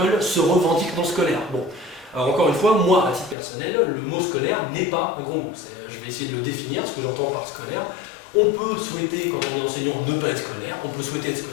se revendiquent non scolaires. Bon, alors encore une fois, moi, à titre personnel, le mot scolaire n'est pas un gros mot. Je vais essayer de le définir, ce que j'entends par scolaire. On peut souhaiter, quand on est enseignant, ne pas être scolaire, on peut souhaiter être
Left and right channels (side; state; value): right; drops out; at 3.4 s